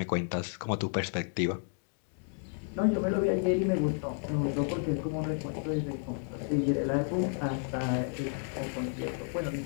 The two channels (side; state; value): right; silent; 57 dB below the other